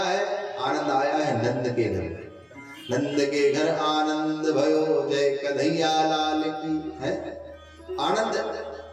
है? आनंद आया है नंद के घर। नंद के घर आनंद भयो, जय कन्हैया लाल की। है आनंद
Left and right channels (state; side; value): identical; both; correlation 1.00